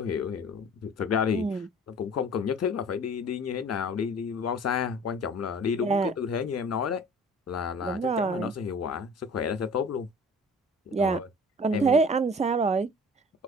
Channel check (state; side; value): normal; both; correlation 0.46